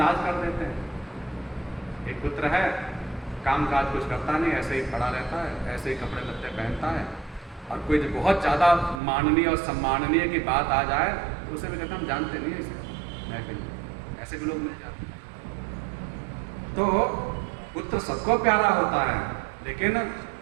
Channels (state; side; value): drops out; left; at 9.0 s